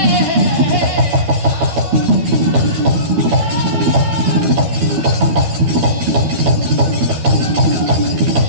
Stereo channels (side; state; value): left; late; 13 ms